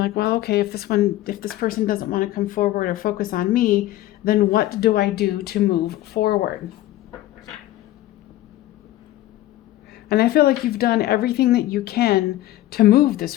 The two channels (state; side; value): quieter; right; 15.2 dB